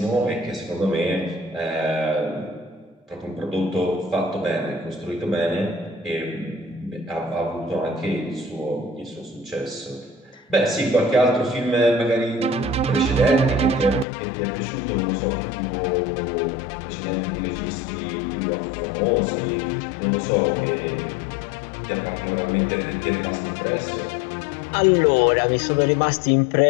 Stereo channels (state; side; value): drops out; right; at 14.1 s